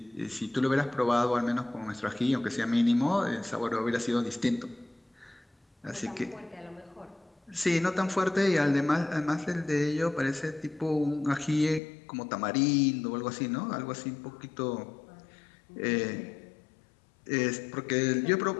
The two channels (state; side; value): drops out; right; at 11.8 s